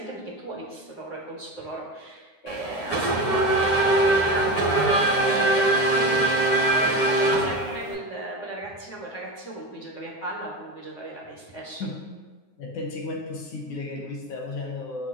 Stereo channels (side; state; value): right; late; 9.6 ms